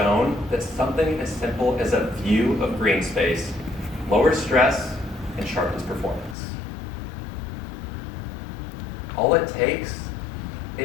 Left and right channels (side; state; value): right; drops out; at 6.4 s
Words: that something as simple as a view of green space lowers stress and sharpens performance. All it takes